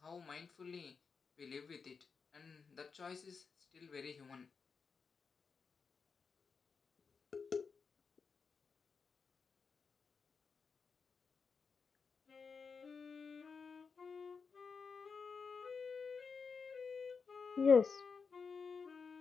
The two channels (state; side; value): quieter; right; 5.3 dB